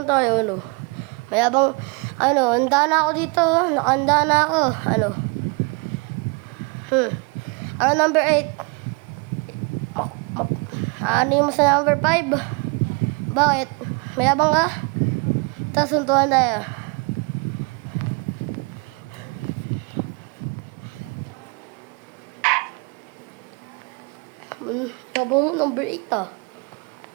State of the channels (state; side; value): quieter; left; 32.0 dB